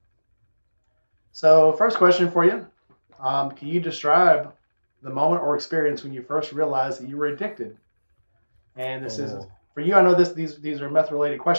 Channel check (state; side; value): inverted; both; correlation -1.00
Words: So first question for you. Can you describe the moment or experience when you first realized that you were addicted? And this is Oh, for you. I know these are meth related